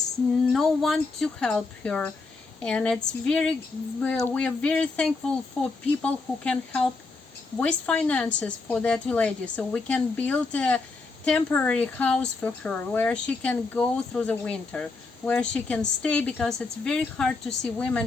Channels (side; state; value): right; quieter; 3.9 dB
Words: no one to help her, and we are very thankful for people who can help with finances for that lady, so we can build a temporary house for her where she can go through the winter, where she can stay, because it's very hard to see